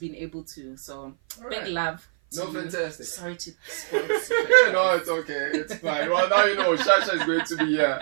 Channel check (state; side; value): silent; left; 56 dB below the other